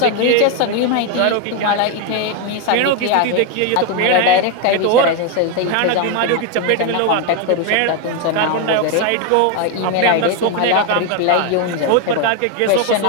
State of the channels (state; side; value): different; both; correlation 0.02